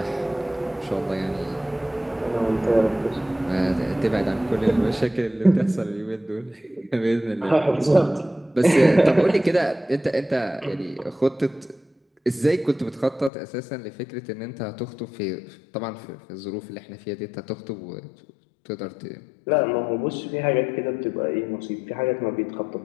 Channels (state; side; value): drops out; right; at 13.3 s